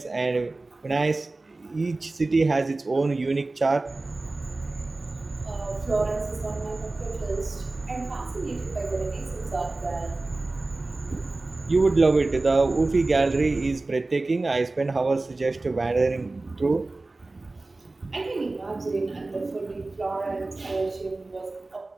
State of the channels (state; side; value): quieter; left; 3.2 dB